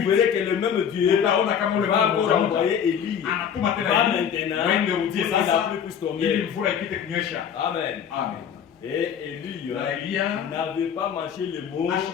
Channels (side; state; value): right; quieter; 8.1 dB